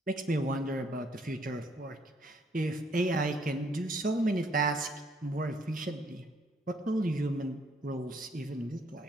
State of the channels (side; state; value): both; normal; correlation 0.67